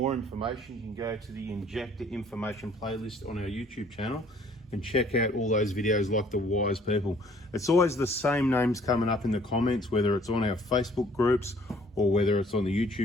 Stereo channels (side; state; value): both; normal; correlation 0.58